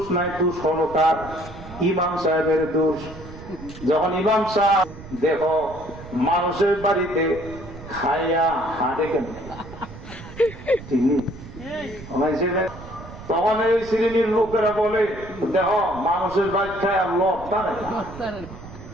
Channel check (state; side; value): noise; right; rumble, 15 dB below the sound